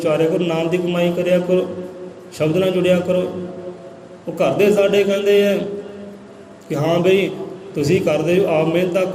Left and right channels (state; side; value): identical; both; correlation 1.00